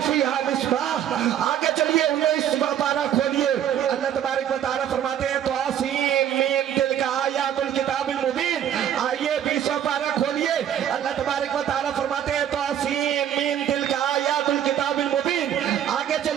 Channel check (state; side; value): quieter; left; 10.1 dB